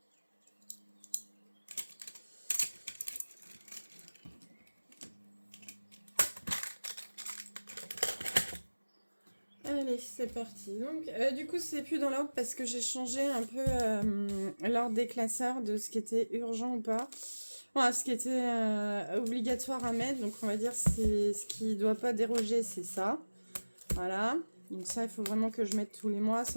Allez, c'est parti. Donc, du coup, c'est plus dans l'ordre parce que j'ai changé un peu l'ordre des classeurs de ce qui était urgent ou pas. Voilà, ce qui était obligatoire à mettre. Donc, on va dire c'est ce qui doit pas déroger, c'est ça. Voilà. Donc ça, il faut vraiment que je mette tous les mois,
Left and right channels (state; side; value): inverted; both; correlation -1.00